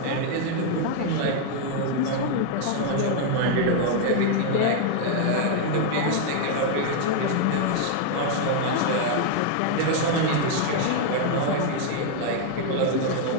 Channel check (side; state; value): both; different; correlation 0.00